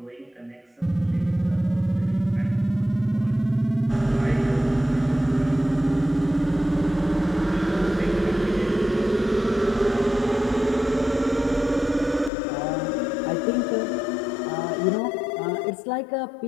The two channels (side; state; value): right; drops out; at 12.3 s